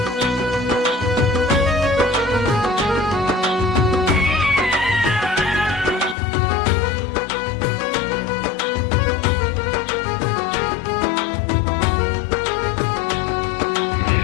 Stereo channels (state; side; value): drops out; right; at 6.2 s